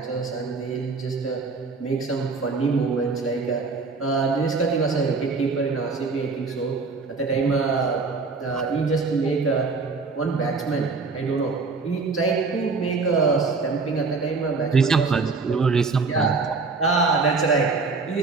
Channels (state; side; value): quieter; left; 4.3 dB